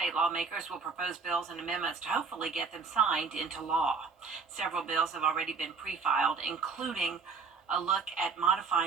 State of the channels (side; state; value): left; quieter; 5.0 dB